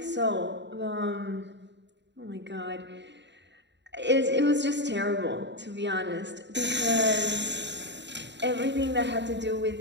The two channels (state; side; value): late; left; 0.52 ms